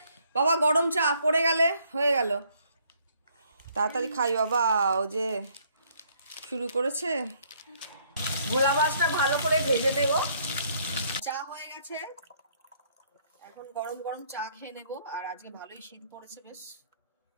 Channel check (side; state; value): both; inverted; correlation -0.66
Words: বাবা গরম চা পড়ে গেলে হয়ে গেল, তাড়াতাড়ি খাই বাবা। ও যে শুরু করেছে। ভোলা মাছটা ভালো করে ভেজে নেব। চা হয়ে গেছে, এখন গরম গরম চা খেয়ে নেব। আর আজকে ভালোই শীত পড়েছে বেশ।